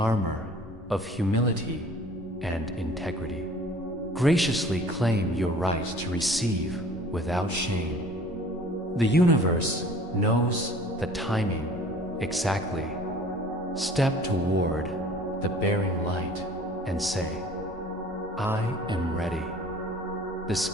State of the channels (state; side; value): normal; both; correlation 0.49